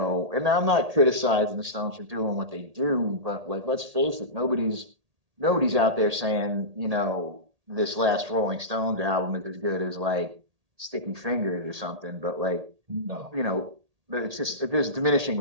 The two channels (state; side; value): late; left; 1.8 ms